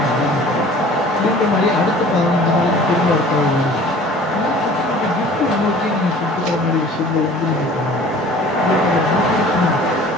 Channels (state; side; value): normal; both; correlation 0.47